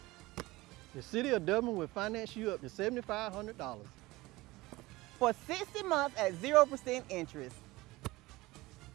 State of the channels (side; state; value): left; quieter; 20.1 dB